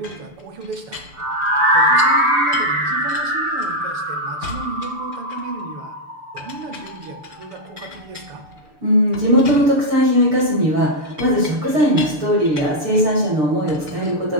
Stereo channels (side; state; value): left; late; 6.8 ms